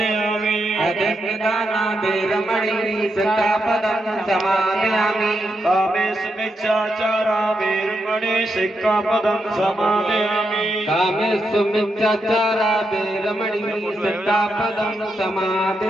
अदिन्नदाना वीरमणि सिक्खापदं समादयामि कामेषु मिथ्याचारा वीरमणि सिक्खापदं समादयामि कामेषु मिथ्याचारा वीरमणि सिक्खापदं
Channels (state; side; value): normal; both; correlation 0.83